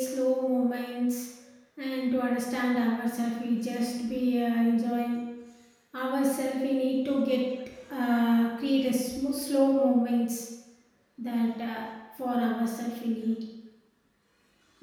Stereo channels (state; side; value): identical; both; correlation 1.00